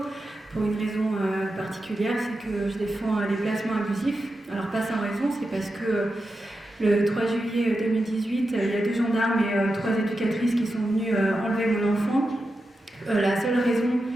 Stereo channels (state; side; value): normal; both; correlation 0.89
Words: pour une raison particulière, c'est que je défends les placements abusifs. Alors, pas sans raison, c'est parce que le 3 juillet 2018, il y a 2 gendarmes et 3 éducatrices qui sont venues enlever mon enfant. La seule raison